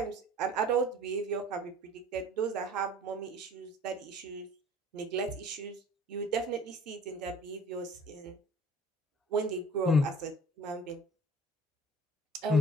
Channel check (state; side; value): normal; both; correlation 0.48